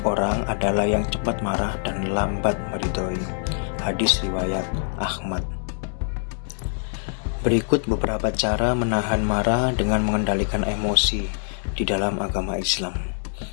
orang adalah yang cepat marah dan lambat meridhoi." Hadis riwayat Ahmad. Berikut beberapa cara menahan marah dengan mengendalikan emosi di dalam agama Islam.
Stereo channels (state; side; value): silent; right; digital silence